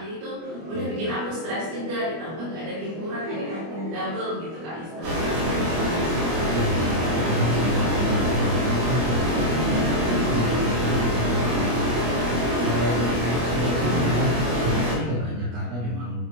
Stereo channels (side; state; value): left; late; 25 ms